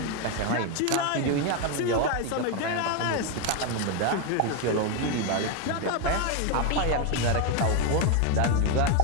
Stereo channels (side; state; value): both; different; correlation 0.01